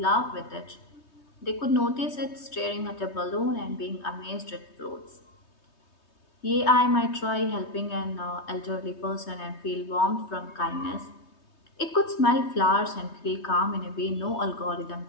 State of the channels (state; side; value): late; right; 3.2 ms